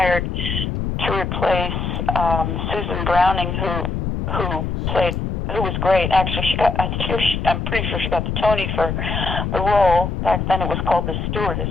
to replace Susan Browning, who was great. Actually, I'm pretty sure she got the Tony for the role. Back then it was called The Stewardess.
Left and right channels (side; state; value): left; noise; rumble, 2 dB below the sound